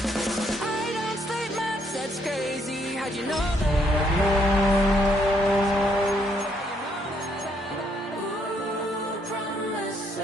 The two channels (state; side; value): normal; both; correlation 0.71